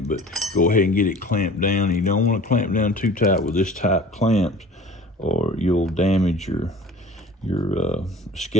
but go ahead and get it clamped down. You don't want to clamp down too tight with this type clamps, or you'll damage your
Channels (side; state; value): both; normal; correlation 0.44